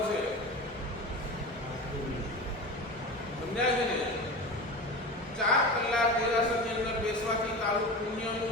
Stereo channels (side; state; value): both; normal; correlation 0.29